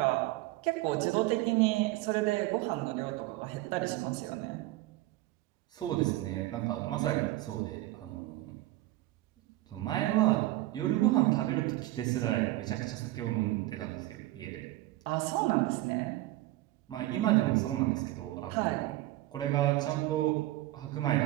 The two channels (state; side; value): quieter; left; 17.1 dB